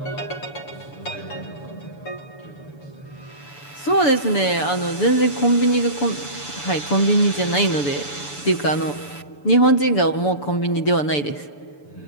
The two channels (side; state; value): right; late; 6.9 ms